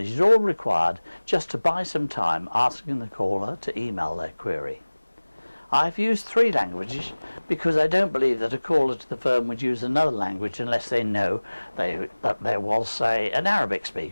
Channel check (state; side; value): inverted; both; correlation -1.00